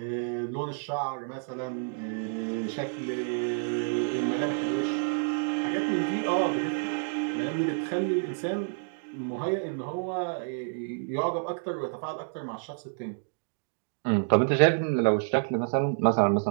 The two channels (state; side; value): silent; left; digital silence